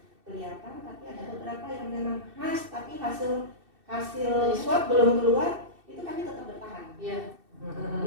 kelihatan, tapi ada beberapa yang memang khas, tapi hasil swab belum keluar, itu kami tetap bertahan. Iya.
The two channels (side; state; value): left; late; 2.6 ms